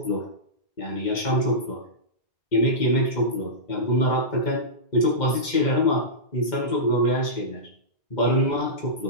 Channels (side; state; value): right; late; 2.1 ms